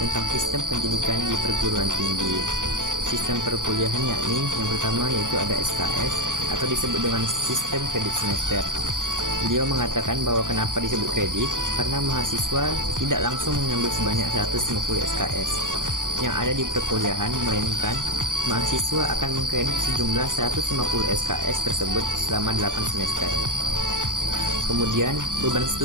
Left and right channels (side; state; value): left; late; 0.88 ms